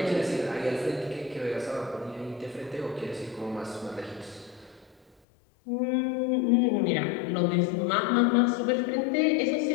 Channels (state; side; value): drops out; right; at 5.2 s